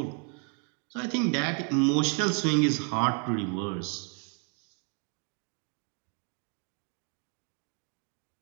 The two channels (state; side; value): quieter; left; 39.2 dB